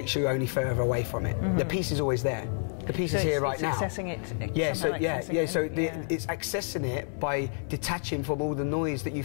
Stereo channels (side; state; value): right; silent; 58 dB below the other